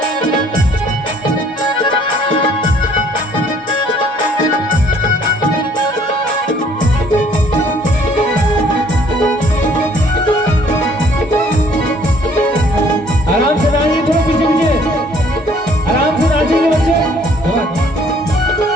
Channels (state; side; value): normal; both; correlation 0.60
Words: आराम से नाचिए, थोड़ा पीछे पीछे आराम से नाचिए बच्चे।